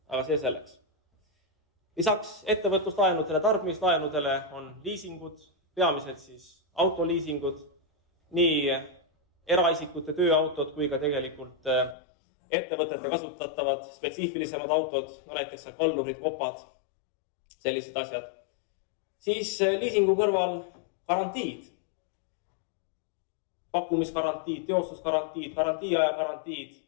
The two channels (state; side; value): drops out; right; at 12.0 s